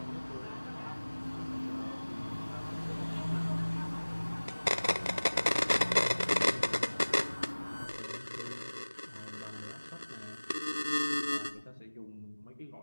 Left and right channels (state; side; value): inverted; both; correlation -1.00